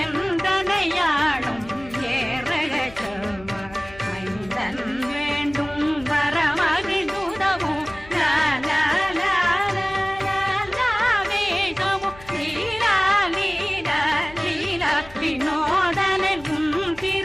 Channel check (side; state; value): left; noise; hum, 20 dB below the sound